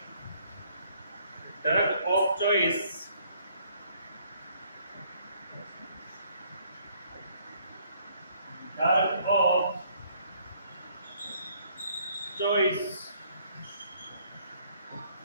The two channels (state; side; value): inverted; both; correlation -0.64